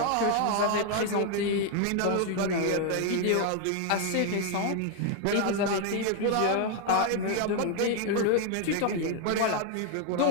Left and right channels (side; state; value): both; different; correlation 0.00